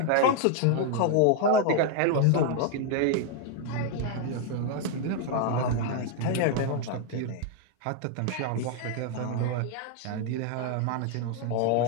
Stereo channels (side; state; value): both; different; correlation 0.00